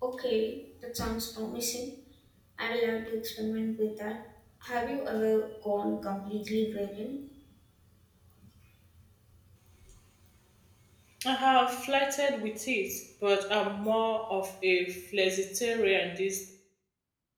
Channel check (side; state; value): both; identical; correlation 1.00